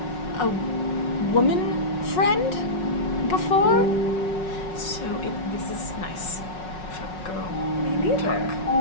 a woman friend before. So this is nice for girl Me neither.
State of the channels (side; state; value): right; late; 5.4 ms